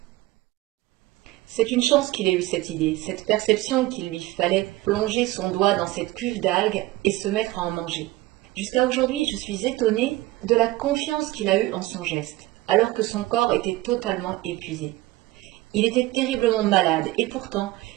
C'est une chance qu'il ait eu cette idée, cette perception qu'il lui fallait plonger son doigt dans cette cuve d'algues et se mettre à en manger. Jusqu'à aujourd'hui, je suis étonnée de la confiance qu'il a eue en son geste, alors que son corps était totalement épuisé. Il était terriblement malade et pourtant,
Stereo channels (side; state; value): left; quieter; 18.1 dB